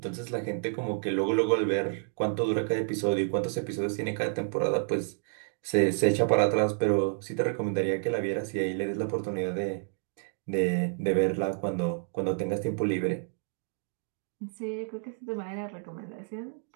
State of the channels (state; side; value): silent; left; 58 dB below the other